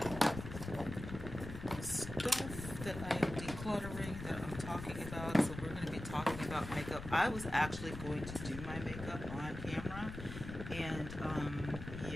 Stuff that I am decluttering that I'm talking about. So we're going to be talking about makeup. I was actually going to do my makeup on camera, and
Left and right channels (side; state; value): left; noise; rumble, 9 dB below the sound